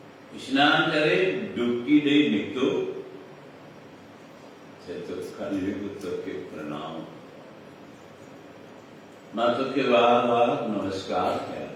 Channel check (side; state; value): both; identical; correlation 1.00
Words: स्नान करे, डुबकी दे निकलो तो कलयुग तो के प्रणाम माता के बार बार नमस्कार किया,